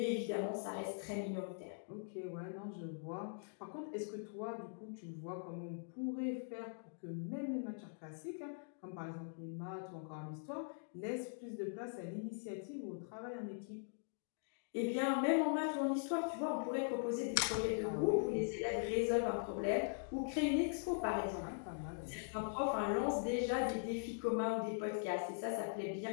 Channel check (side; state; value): right; silent; digital silence